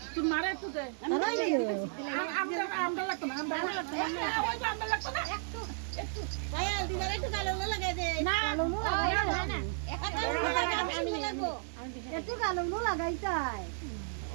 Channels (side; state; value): left; silent; 55 dB below the other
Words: তুই মারে একটু দে আমরা লাগতো না আমরা লাগতো না ওই আমরা লাগতো না একটু ভাই দিদার একটু কালো লাগাই দে না কালো না একটু লাগবো একটু কালো লাগাই চাই